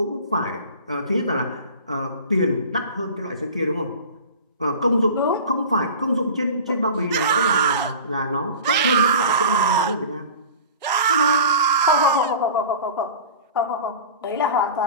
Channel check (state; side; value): inverted; both; correlation -0.37